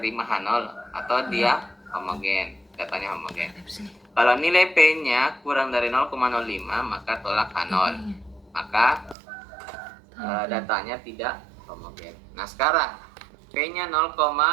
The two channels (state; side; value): drops out; left; at 9.2 s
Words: H0 atau dia homogen, datanya homogen. Kalau nilai P-nya kurang dari 0,05, maka tolak H0. Maka datanya tidak homogen. Nah, sekarang P-nya